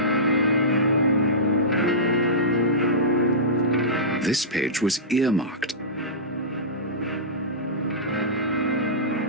This page was earmarked.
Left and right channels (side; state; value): both; normal; correlation -0.18